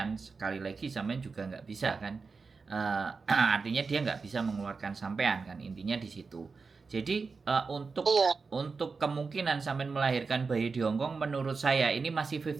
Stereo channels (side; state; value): left; quieter; 4.6 dB